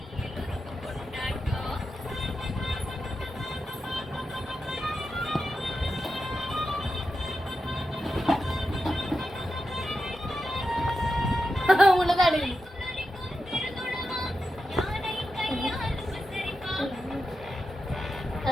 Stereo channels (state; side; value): normal; both; correlation 0.89